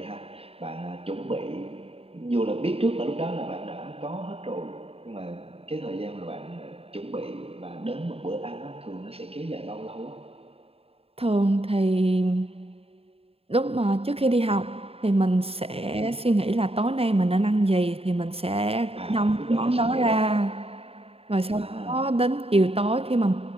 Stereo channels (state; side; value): late; left; 0.28 ms